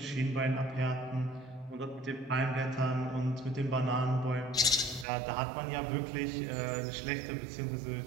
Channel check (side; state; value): left; drops out; at 5.1 s